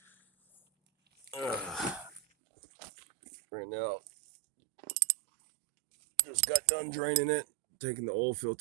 Right now, just got done draining it, taking the oil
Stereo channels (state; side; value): drops out; left; at 2.2 s